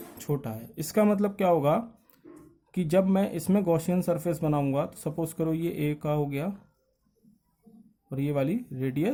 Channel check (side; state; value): both; identical; correlation 1.00